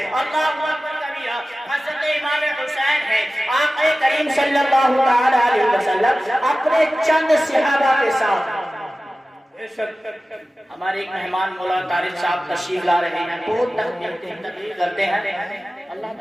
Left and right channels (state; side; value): normal; both; correlation 0.96